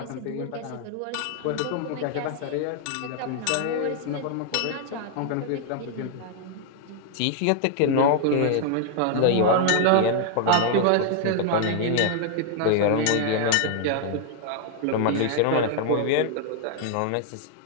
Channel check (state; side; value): different; both; correlation 0.00